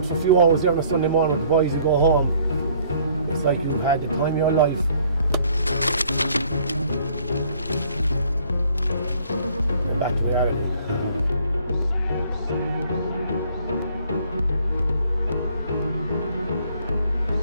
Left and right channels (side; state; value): both; inverted; correlation -0.60